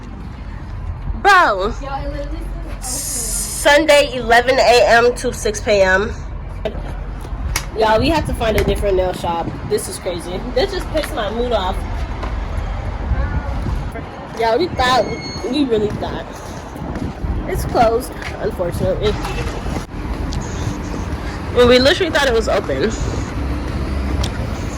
Bro. Sunday 11 a.m. to 6 p.m. Y'all, we have to find a different nail shop. This is crazy. This just pissed my mood off. Y'all, we really thought. It's closed, unfortunately. And we literally thought it was open.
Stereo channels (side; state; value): both; identical; correlation 1.00